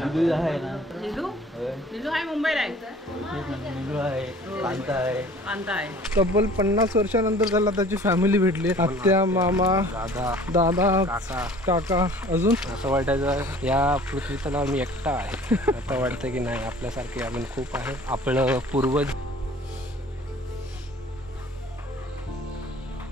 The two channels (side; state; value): both; normal; correlation 0.49